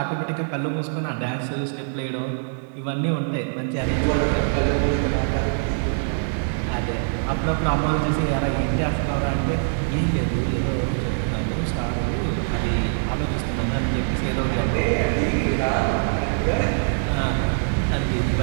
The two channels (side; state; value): left; silent; digital silence